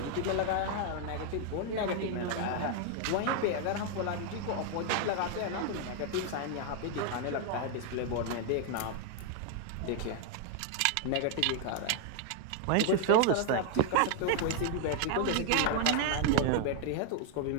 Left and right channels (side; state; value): both; different; correlation 0.00